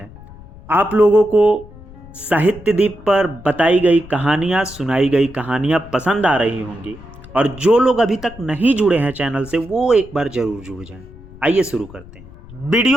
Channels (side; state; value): left; noise; rumble, 19 dB below the sound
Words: आप लोगों को साहित्य दीप पर बताई गई कहानियां, सुनाई गई कहानियां पसंद आ रही होंगी, और जो लोग अभी तक नहीं जुड़े हैं चैनल से वो एक बार जरूर जुड़ जाएं। आइए शुरू करते हैं।